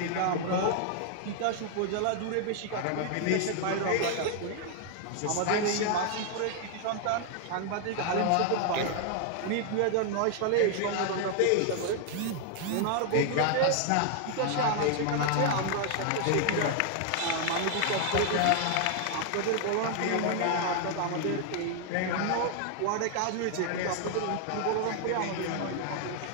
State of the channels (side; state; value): both; different; correlation 0.00